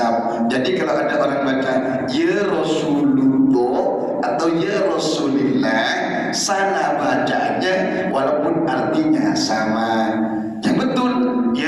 Jadi kalau ada orang baca ya Rasulullah atau ya Rasulillah, salah bacanya walaupun artinya sama. Yang betul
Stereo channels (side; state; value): both; identical; correlation 1.00